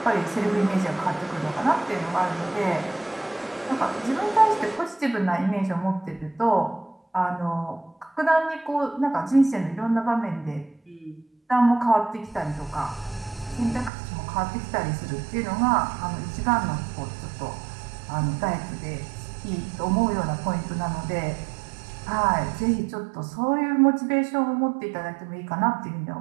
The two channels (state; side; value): drops out; left; at 13.9 s